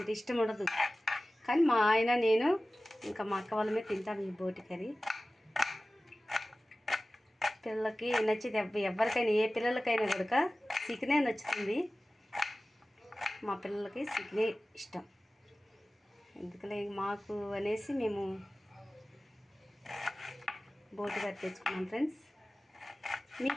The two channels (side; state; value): both; normal; correlation 0.97